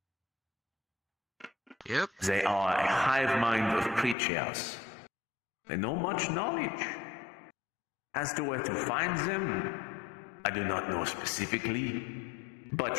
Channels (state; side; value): drops out; right; at 4.2 s